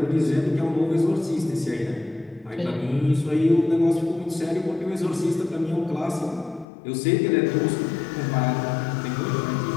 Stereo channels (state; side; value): drops out; right; at 6.7 s